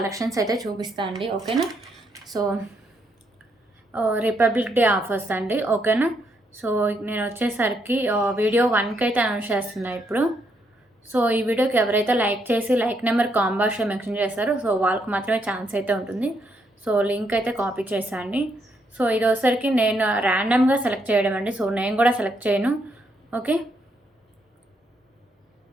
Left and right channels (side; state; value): both; normal; correlation 0.76